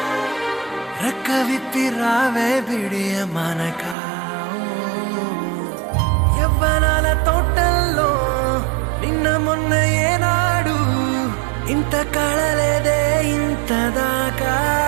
రెక్క విప్పి రావే బిడియ మనక. యవ్వనాల తోటల్లో నిన్న మొన్న ఏనాడు ఇంత కళలేదే ఇంత దాకా.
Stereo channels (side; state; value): left; drops out; at 4.0 s